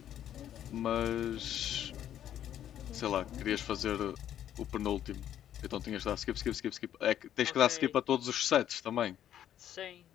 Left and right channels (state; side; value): quieter; right; 10.7 dB